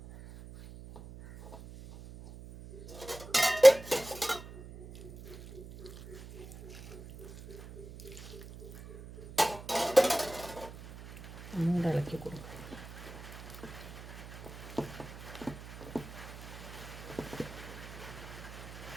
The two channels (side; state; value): right; noise; hum, 14 dB below the sound